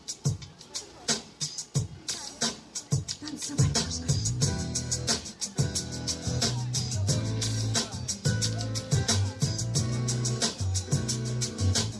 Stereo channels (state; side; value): identical; both; correlation 1.00